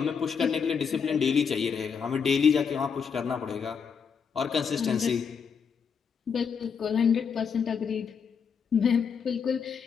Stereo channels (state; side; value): quieter; right; 6.5 dB